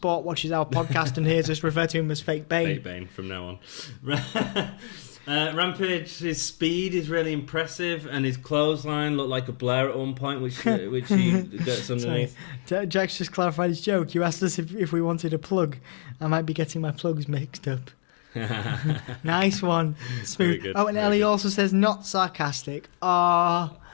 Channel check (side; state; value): right; silent; digital silence